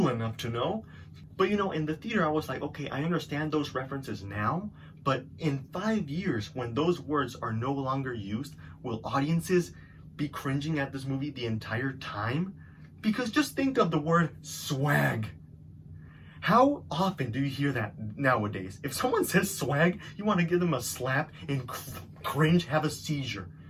enough to know. But, you know, in the theater, I was like, okay, I understand those references now, but in 5 years, when those words are no longer used, will audiences be cringing at this movie the entire time? Because just think of the word swag. How often do you hear that nowadays? If someone says swag, you want to give them a slap and cringe, have a seizure.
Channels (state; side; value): identical; both; correlation 1.00